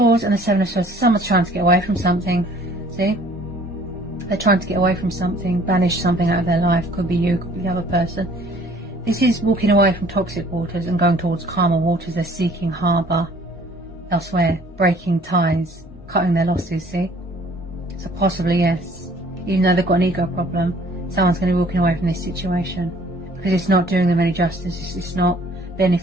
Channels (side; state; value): both; normal; correlation 0.56